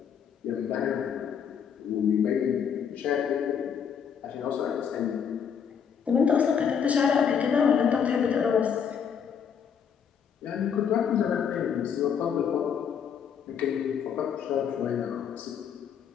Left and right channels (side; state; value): right; quieter; 7.4 dB